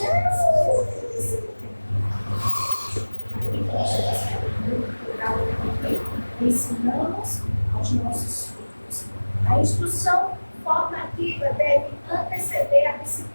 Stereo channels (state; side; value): inverted; both; correlation -1.00